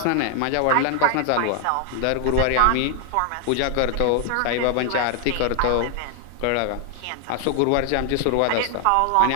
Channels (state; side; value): different; both; correlation 0.00